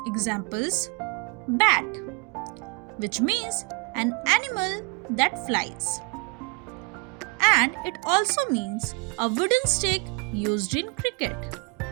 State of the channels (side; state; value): left; quieter; 31.9 dB